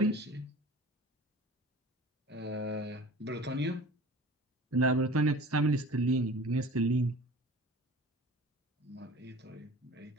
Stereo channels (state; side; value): normal; both; correlation 0.41